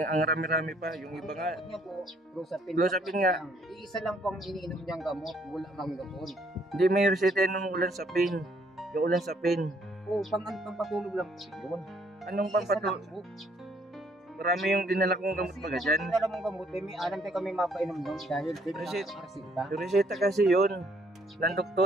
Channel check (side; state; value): both; normal; correlation 0.66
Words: rami-rami pa, yung iba nga. Niya po, Clozapine nga. Iisa lang pang iniinom niyang gamot, wala mang gamot. Hindi may reseta ng ulan sa pain. Yung ulan sa pain. Oo, pang-patulog lang po yun. Anong Isa pampatulog? lang po. Marami yung dinala kong gamot baga dyan. Kasi yung mong gamot, may alam tayo kami mapainom doon dahil Reseta. reseta. Yung reseta kasi yun. Ng